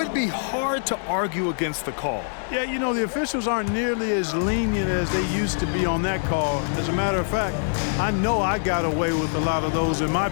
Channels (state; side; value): silent; right; digital silence